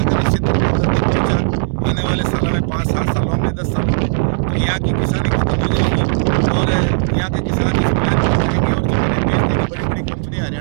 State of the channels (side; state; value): left; silent; digital silence